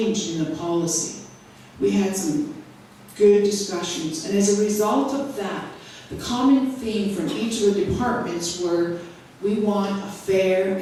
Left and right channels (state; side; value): identical; both; correlation 1.00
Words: in the policy? We had some good discussions, and as a result of that, the common theme from each of the departments were, we want a fair